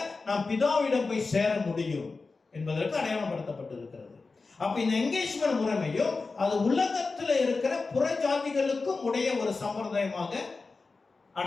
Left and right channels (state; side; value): quieter; right; 4.0 dB